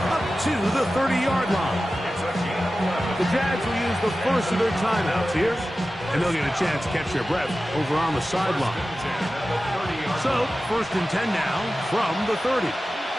up to the 30-yard line. The Jags will use the first of their timeouts here, and they'll get a chance to catch their breath over on the sideline. So, first and 10 now from the 30.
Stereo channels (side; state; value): both; normal; correlation 0.94